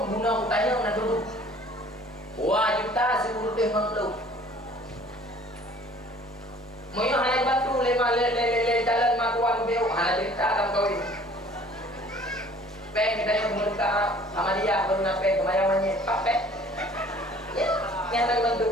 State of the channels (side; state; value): both; normal; correlation 0.52